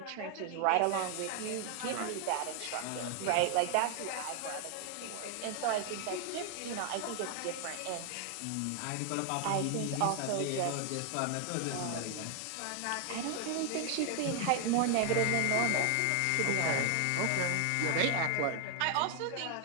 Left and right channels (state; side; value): different; both; correlation 0.00